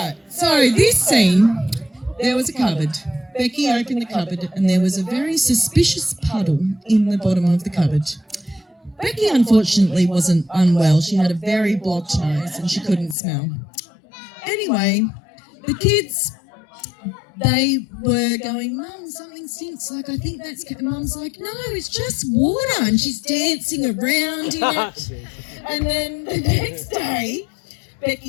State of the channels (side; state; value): right; drops out; at 13.2 s